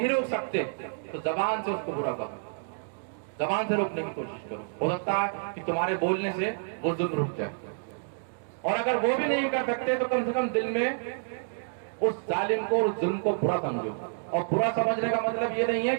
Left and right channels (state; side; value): silent; left; digital silence